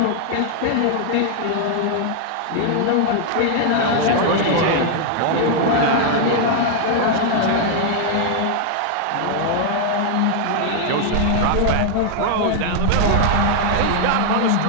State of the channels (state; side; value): different; both; correlation 0.00